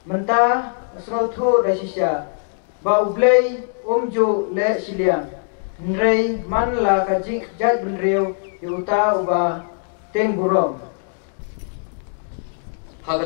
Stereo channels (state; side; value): silent; right; 63 dB below the other